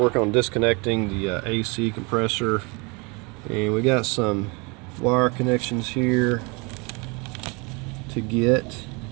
on disconnecting the AC compressor, and we got some wire connections here to get,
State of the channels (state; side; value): quieter; left; 29.2 dB